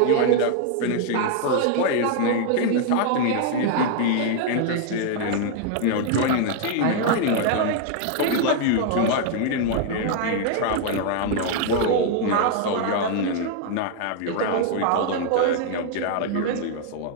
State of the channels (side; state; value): both; different; correlation 0.00